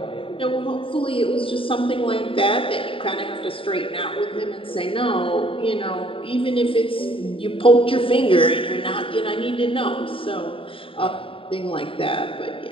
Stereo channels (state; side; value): late; right; 0.26 ms